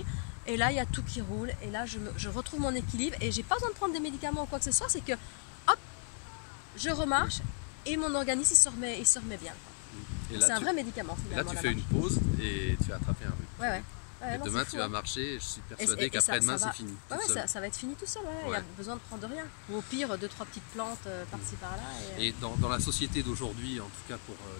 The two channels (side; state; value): right; silent; 55 dB below the other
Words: Et là, il y a tout qui roule. Et là, je retrouve mon équilibre. Et j'ai pas besoin de prendre des médicaments ou quoi que ce soit. C'est que, hop, je remarche et mon organisme il se remet bien. C'est un vrai médicament. Et là, tu fais une pause et tu as attrapé un rhume. Ouais, et demain, tu vas marcher. Je suis persuadé qu'après-demain, c'est fini. Ça va être fini tout seul. Il n'y a besoin de prendre rien. Ou au pire, 2-3 petites plantes par-ci par-là. Et dans la société d'aujourd'hui, en tout cas pour